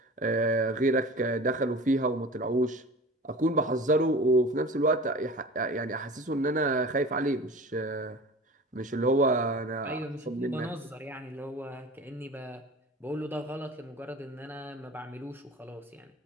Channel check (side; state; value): both; normal; correlation 0.38